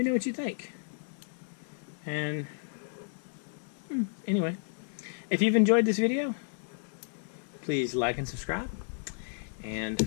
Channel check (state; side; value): silent; right; digital silence